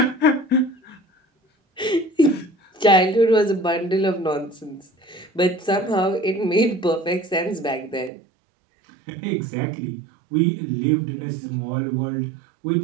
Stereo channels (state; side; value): drops out; left; at 8.1 s